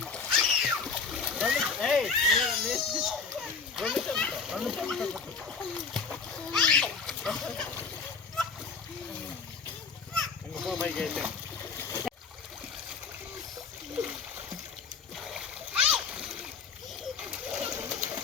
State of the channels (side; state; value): right; quieter; 5.2 dB